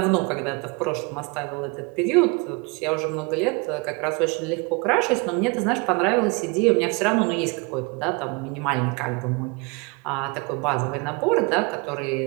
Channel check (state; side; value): quieter; left; 29.9 dB